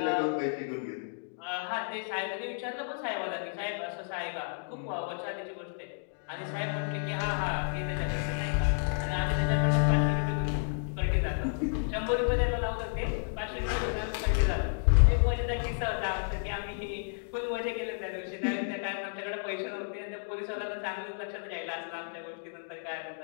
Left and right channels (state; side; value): silent; right; digital silence